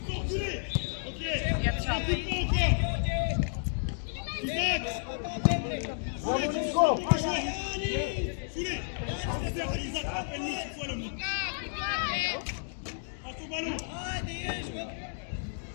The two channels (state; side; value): silent; right; digital silence